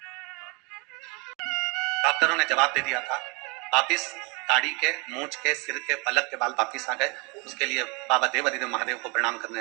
डॉक्टरों ने जवाब दे दिया था, वापिस दाढ़ी के, मूछ के, सिर के, पलक के बाल वापिस आ गए। उसके लिए बाबा देवाधिदेव महादेव को प्रणाम करने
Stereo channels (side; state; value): left; quieter; 29.8 dB